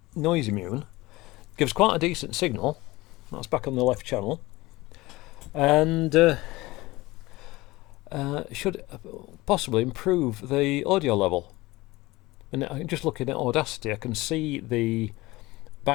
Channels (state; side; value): quieter; right; 20.3 dB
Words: noise immune, gives quite a decent signal. That's back on the left channel, and should possibly improve the audio level. And just looking at Audacity, I can see the